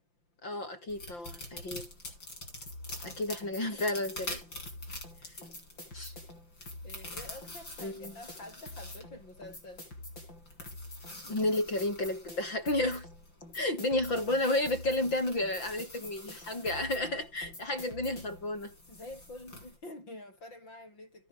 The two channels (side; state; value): right; late; 5.8 ms